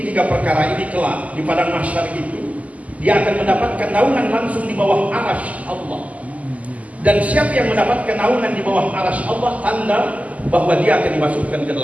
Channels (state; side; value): late; left; 0.072 ms